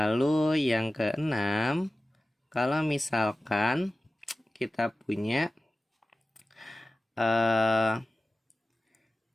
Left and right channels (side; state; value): both; normal; correlation 0.96